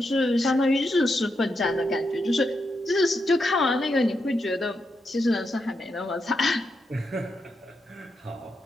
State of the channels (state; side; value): normal; both; correlation 0.84